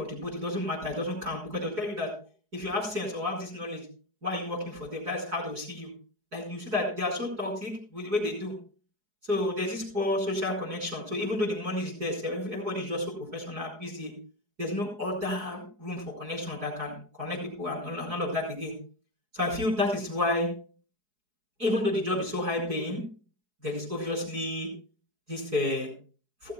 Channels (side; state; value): left; late; 4.7 ms